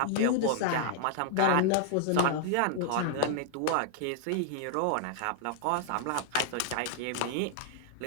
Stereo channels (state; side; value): different; both; correlation -0.01